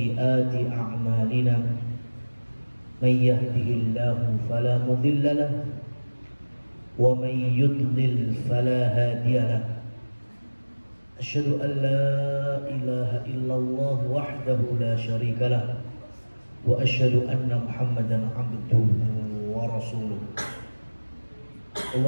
a'malina. من يهده الله فلا مضل له ومن يضلل فلا هادي له أشهد أن لا إله إلا الله وحده لا شريك له وأشهد أن محمدا عبده ورسوله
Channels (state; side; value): inverted; both; correlation -1.00